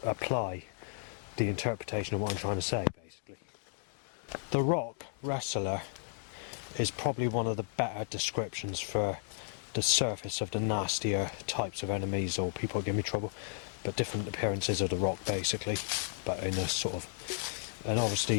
apply the interpretation of what I'm trying to say, basically. The Rock wrestler is probably one of the better descriptions for the surface of the nastier types of enemies or people that give me trouble, but different appearances of The Rock, basically, but in a sort of... And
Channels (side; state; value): right; silent; digital silence